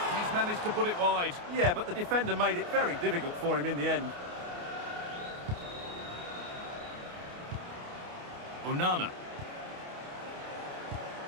he's managed to put it wide. Yeah, but the defender made it very difficult for him in the end. Onana.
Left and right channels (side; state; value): left; late; 28 ms